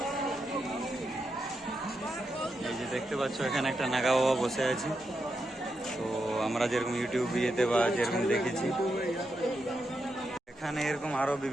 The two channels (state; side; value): normal; both; correlation 0.85